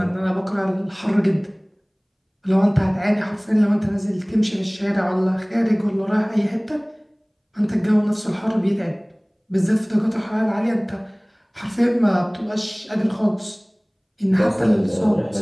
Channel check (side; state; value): both; identical; correlation 1.00